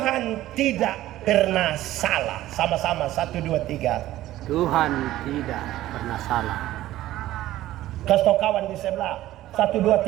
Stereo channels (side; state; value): left; quieter; 14.8 dB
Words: tidak pernah salah. Sama-sama 1, 2, 3. Tuhan tidak pernah salah. Kasih tau kawan di sebelah. 1, 2,